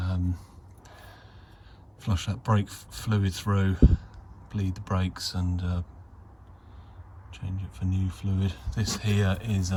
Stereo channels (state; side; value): identical; both; correlation 1.00